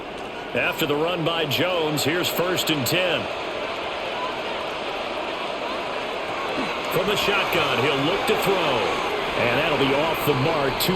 After the run by Jones, here's 1st and 10. From the shotgun, he'll look to throw. And that'll be off the mark,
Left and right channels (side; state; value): both; identical; correlation 1.00